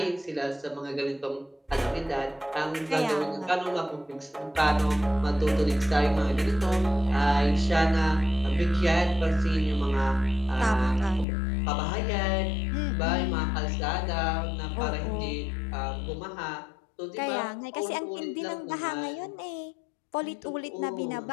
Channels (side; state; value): right; drops out; at 11.2 s